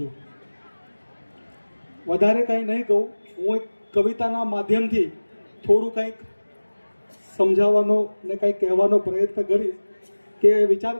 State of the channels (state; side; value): inverted; both; correlation -1.00